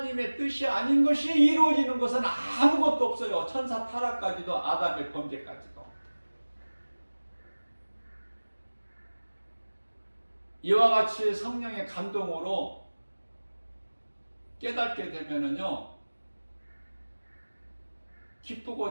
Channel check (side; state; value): both; inverted; correlation -1.00